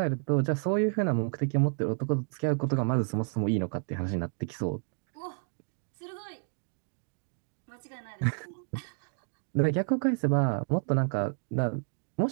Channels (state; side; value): silent; left; digital silence